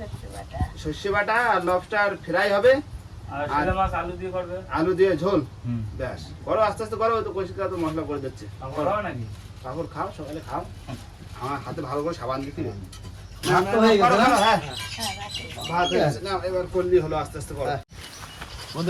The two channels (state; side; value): identical; both; correlation 1.00